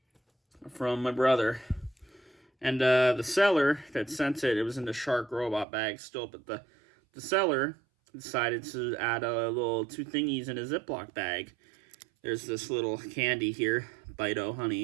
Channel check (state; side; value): drops out; left; at 5.7 s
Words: From my brother. And the seller that sent it, it was in the shark robot bag still, but the seller decided to add a little 2 thingies in a Ziploc bag. There's this little candy here, Bite-O